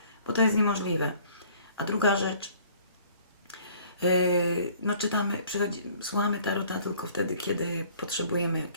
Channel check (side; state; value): both; inverted; correlation -0.55